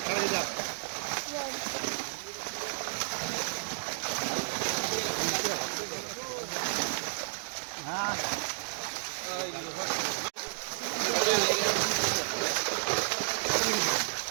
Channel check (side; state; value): left; silent; digital silence